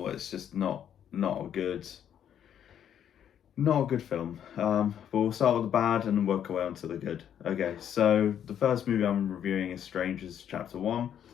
it's just not a good not a good film. But we'll start with the bad and then work our way on to the good. Okay, so the first movie I'm reviewing is Strangers Chapter 1.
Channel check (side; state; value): right; quieter; 9.4 dB